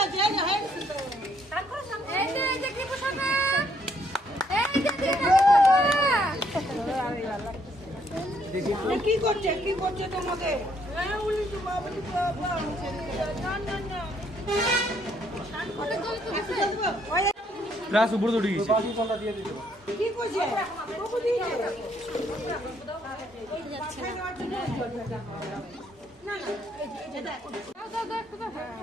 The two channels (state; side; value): normal; both; correlation 0.69